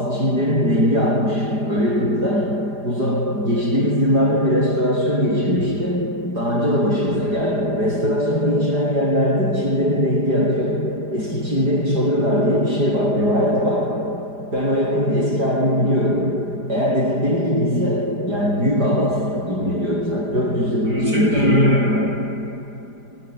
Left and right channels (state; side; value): late; left; 4.9 ms